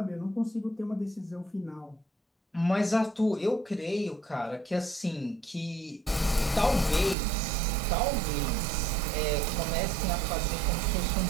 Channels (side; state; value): left; drops out; at 7.2 s